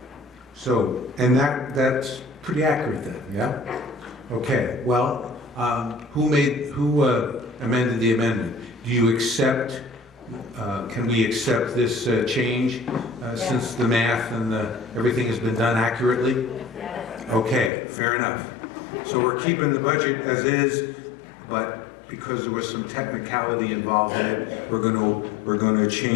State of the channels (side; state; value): right; drops out; at 17.7 s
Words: So, and that's pretty accurate then, yeah? Okay, well, who amended the amendment? Do you accept, can we accept this change since the math and everything has been done accurately? Okay, fair enough. So we're keeping the budget as is, but because there was some technicality involved in it, we're going to